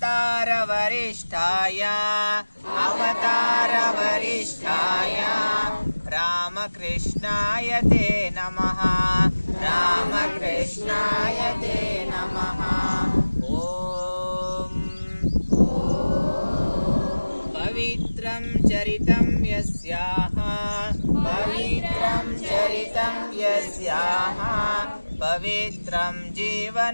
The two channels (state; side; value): inverted; both; correlation -1.00